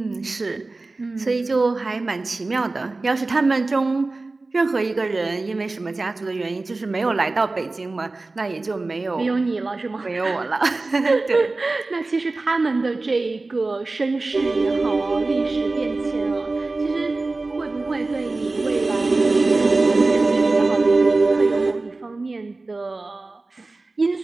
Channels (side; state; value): left; quieter; 3.3 dB